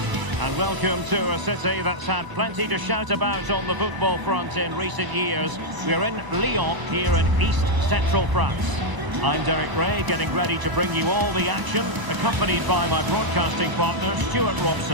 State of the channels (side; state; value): left; late; 1.0 ms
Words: And welcome to a city that's had plenty to shout about on the football front in recent years. We're in Lyon, here in East Central France. I'm Derek Ray, getting ready to bring you all the action, accompanied by my broadcasting partner, Stuart